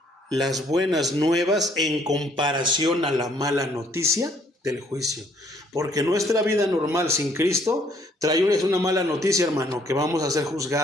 Las buenas nuevas en comparación a la mala noticia del juicio. Porque nuestra vida normal sin Cristo trae una mala noticia, hermano, que vamos a ser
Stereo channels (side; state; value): both; normal; correlation 0.64